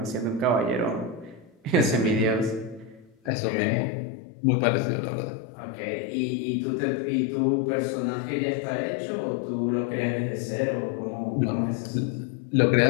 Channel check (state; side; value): drops out; right; at 3.3 s